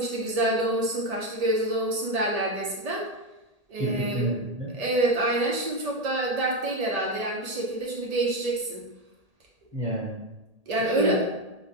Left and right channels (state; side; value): late; left; 1.8 ms